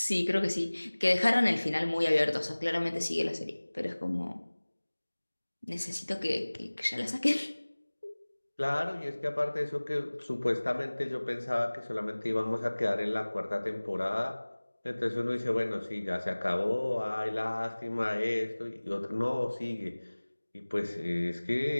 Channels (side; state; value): both; inverted; correlation -1.00